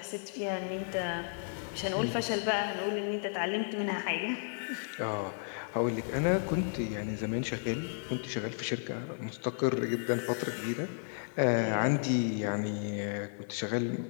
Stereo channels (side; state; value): right; silent; 56 dB below the other